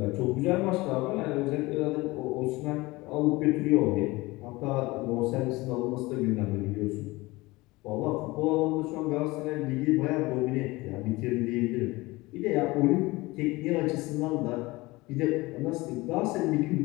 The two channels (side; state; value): right; quieter; 21.5 dB